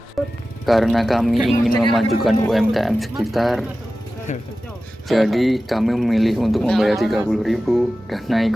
Karena kami ingin memajukan UMKM sekitar, jadi kami memilih untuk membayar 30.000 dan naik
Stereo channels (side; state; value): both; normal; correlation 0.95